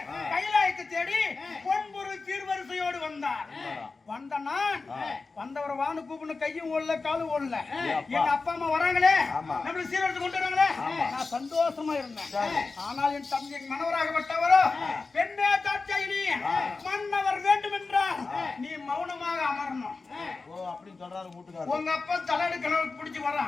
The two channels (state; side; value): quieter; right; 4.0 dB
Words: கைலாயத்தை தேடி பொன்பொருள் சீர்வரிசையோடு வந்தார். வந்த நான் வந்தவரை வானு கூப்பிடணும். கையும் ஓடல காலும் ஓடல. என் அப்பா அம்மா வராங்களே நம்மளுக்கு சீர்வரிசை கொண்டு வராங்களே நான் சந்தோஷமா இருந்தேன். ஆனால் என் தந்தை மனவராகப்பட்டவரோ பெண்ணே தாட்சாயினி மன்னவர் வேண்டும் என்றால் நீ மௌனமாக அமரணும். அப்படின்னு சொல்றாரு வீட்டுக்காரர். உங்க அப்பா தலையடு கனவு பிடிச்சு